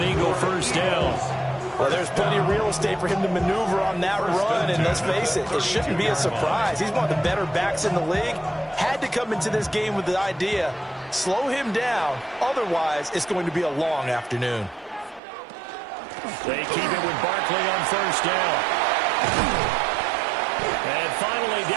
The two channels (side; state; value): left; drops out; at 15.2 s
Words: Eagle first down. Well, there's plenty of real estate for him to maneuver on that run, and let's face it, it shouldn't be a surprise. He's one of the better backs in the league. Had to come into this game with the idea, slow him down, otherwise it's going to be a long afternoon. They keep it with Barkley on first down. And finally,